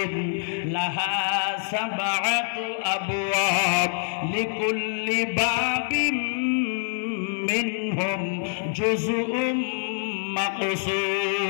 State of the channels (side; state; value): right; silent; digital silence